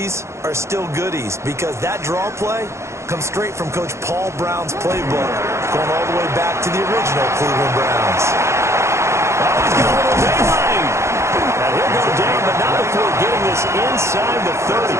are still goodies? Because that draw play comes straight from Coach Paul Brown's playbook, going all the way back to the original Cleveland Browns. Oh, he's got a little daylight. And he'll go down, but not before getting this inside the 30.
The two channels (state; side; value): late; left; 0.14 ms